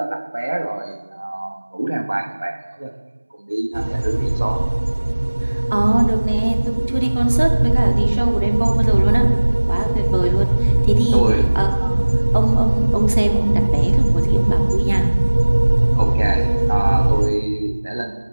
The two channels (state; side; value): inverted; both; correlation -1.00